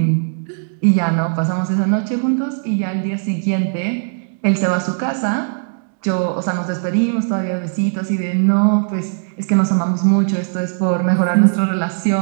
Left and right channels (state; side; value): silent; left; digital silence